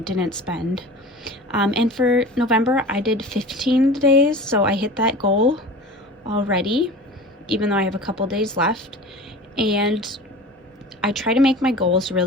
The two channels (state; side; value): normal; both; correlation 0.37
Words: spend. And for November, I did 15 days, so I hit that goal already, even though I have a couple days left. And I try to make my goals